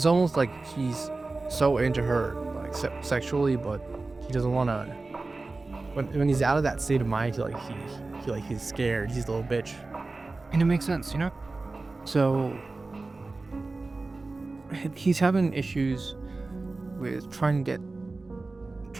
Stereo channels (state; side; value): quieter; left; 3.5 dB